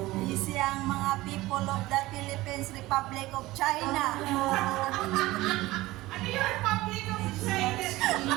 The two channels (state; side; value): quieter; left; 18.6 dB